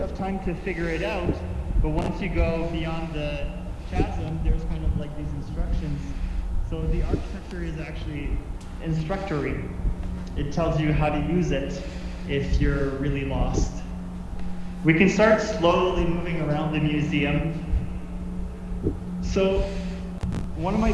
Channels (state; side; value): identical; both; correlation 1.00